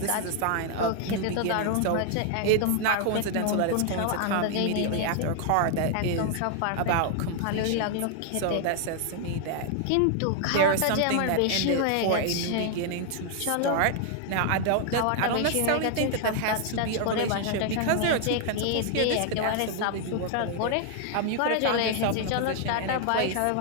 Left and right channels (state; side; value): different; both; correlation 0.00